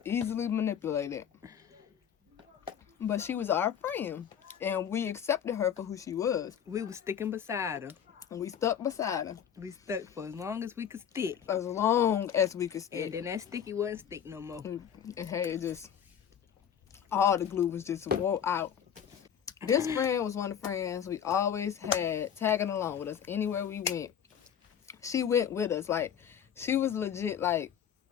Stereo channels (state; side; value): quieter; right; 8.6 dB